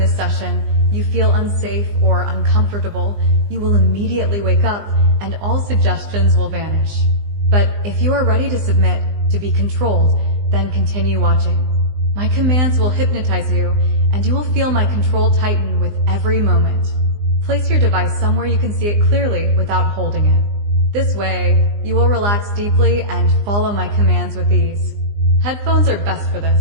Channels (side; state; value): left; late; 20 ms